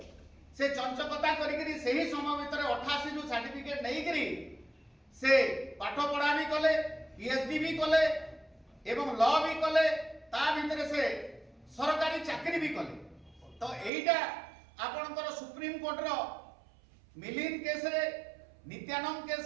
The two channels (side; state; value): left; drops out; at 13.9 s